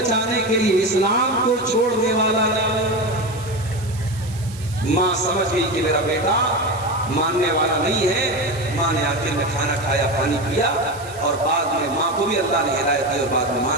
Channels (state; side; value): noise; right; hiss, 18 dB below the sound